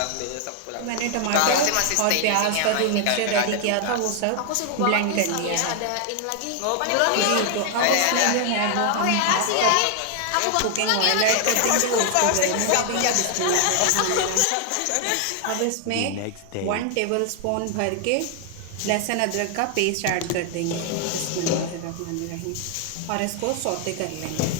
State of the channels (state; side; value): different; both; correlation 0.00